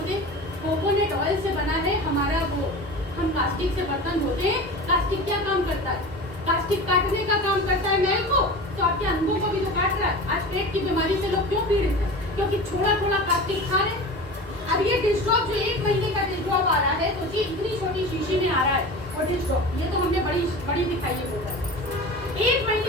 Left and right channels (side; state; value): both; normal; correlation 0.33